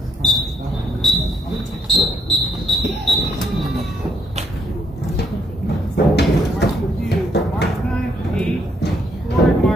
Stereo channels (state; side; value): normal; both; correlation 0.72